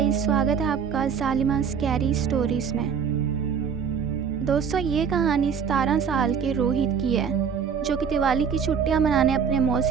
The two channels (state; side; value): quieter; left; 6.8 dB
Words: स्वागत है आपका जालिमा स्कैरी स्टोरीज़ में। दोस्तों, ये कहानी 17 साल के रोहित की है, जो कि दिवाली की छुट्टियां मनाने अपने